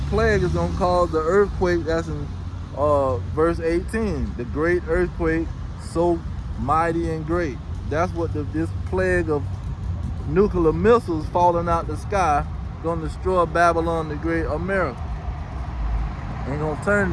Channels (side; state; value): both; identical; correlation 1.00